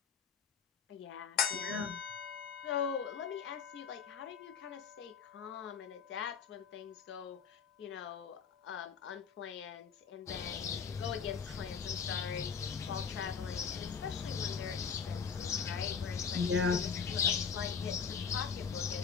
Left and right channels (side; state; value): right; quieter; 6.3 dB